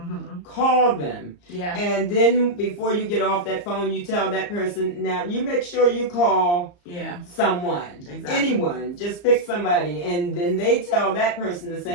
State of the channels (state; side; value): late; right; 34 ms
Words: Call them. Yeah. And then before you get off that phone, you tell that person, now you make sure you call someone. Exactly. Anyone. Just pick somebody. And then they tell that person the